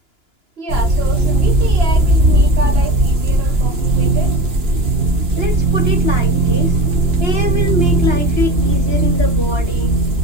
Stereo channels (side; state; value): left; late; 2.9 ms